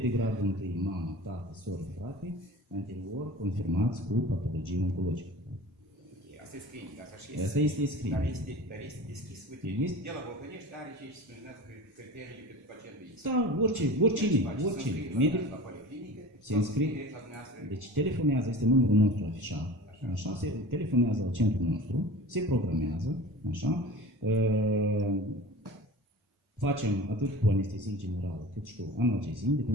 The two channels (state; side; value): normal; both; correlation 0.37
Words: gradul întâi, mamă, tată, soră, frate, anterior confirmați cu patologie oncologică. Asta e screening, asta și este. Asta este screening. Dar este deschis, uite, de la Vulcănești are ce se spunează criteriile pentru pacientul este. Da, oricine, medic se înscrie. Deci telefonează, este numărul nostru afișat, așa, se telefonează la centrul nostru, se programează, așa, facem atât cu anestezie generală, cât și cu analgezie, în